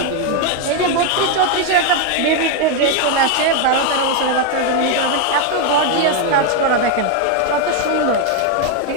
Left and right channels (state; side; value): different; both; correlation 0.01